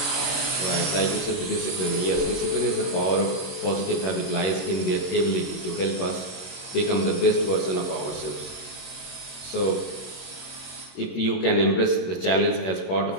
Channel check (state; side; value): late; right; 22 ms